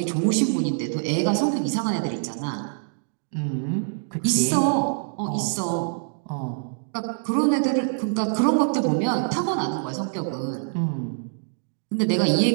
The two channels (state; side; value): silent; left; digital silence